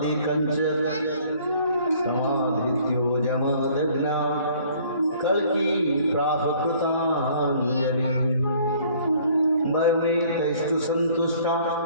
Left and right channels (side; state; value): both; inverted; correlation -0.57